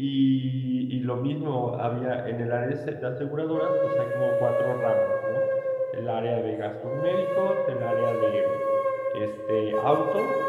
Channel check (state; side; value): identical; both; correlation 1.00